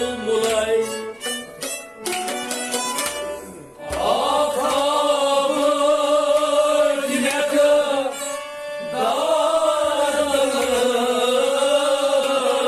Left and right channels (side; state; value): both; identical; correlation 1.00